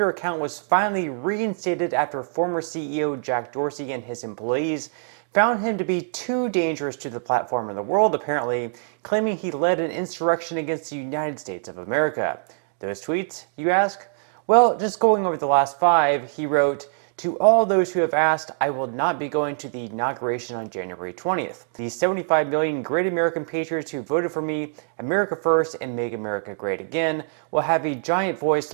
account was finally reinstated after former CEO Jack Dorsey and his employees found him to be too dangerous to the platform and the world, apparently, claiming he led an insurrection against the United States of America. Those tweets, you ask? Well, just going over the last 5, he wrote, "To all those who have asked, I will not be going to the inauguration on January 20th. The 75 million great American patriots who voted for me, America first and make America great again, will have a giant voice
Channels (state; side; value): silent; left; digital silence